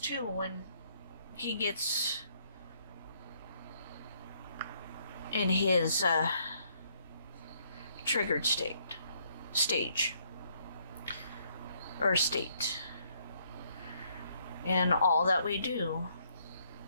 when he gets in his triggered stage. And all that we do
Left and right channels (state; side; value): inverted; both; correlation -0.69